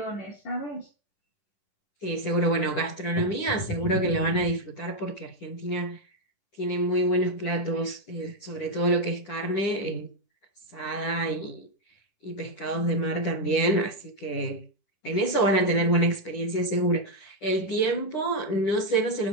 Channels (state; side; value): late; right; 10 ms